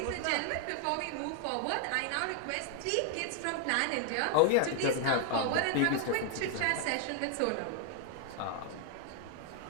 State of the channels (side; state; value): both; different; correlation 0.00